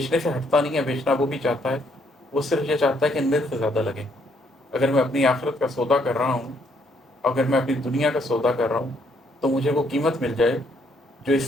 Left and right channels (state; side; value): normal; both; correlation 0.70